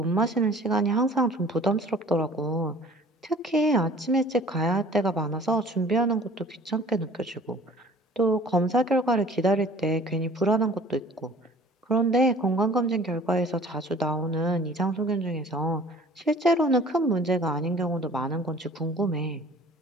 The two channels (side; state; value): both; normal; correlation 0.49